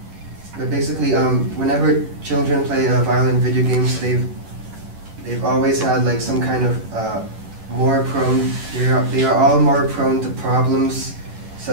whenever children play violent video games, they've always had like some kind of they are all more prone to problems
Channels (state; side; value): late; left; 11 ms